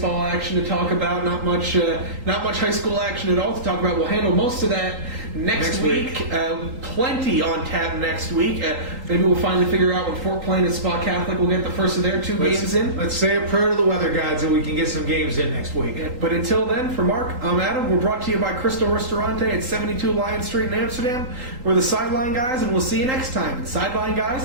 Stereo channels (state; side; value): late; left; 3.8 ms